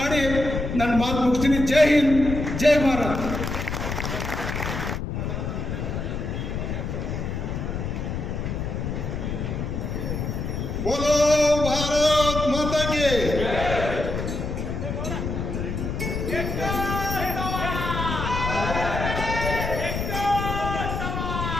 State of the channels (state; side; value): noise; left; rumble, 3 dB below the sound